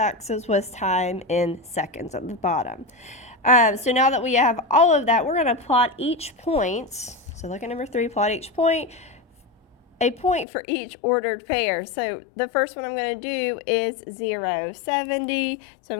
was time in seconds at the bottom. So now that we have all of that, we're going to plot each point. So look at number 3, plot each point. A point for each ordered pair. So the first one I'm going to do is 0, 70. So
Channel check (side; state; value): right; drops out; at 10.5 s